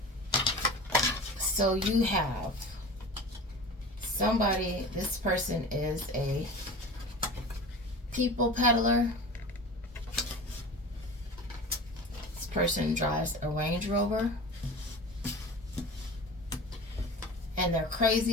So you have somebody, this person is a people peddler. This person drives a Range Rover. And they're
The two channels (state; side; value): normal; both; correlation 0.35